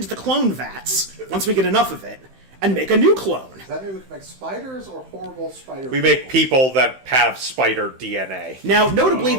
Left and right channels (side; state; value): left; late; 15 ms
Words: the clone vats, once we get enough of it, and make a new clone. Does that mean we can make spiders or horrible spider We make people that have spider DNA. Now, notably,